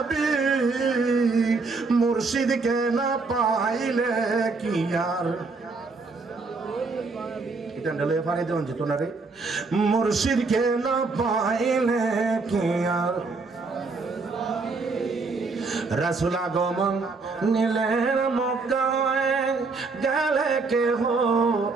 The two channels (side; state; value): left; quieter; 4.1 dB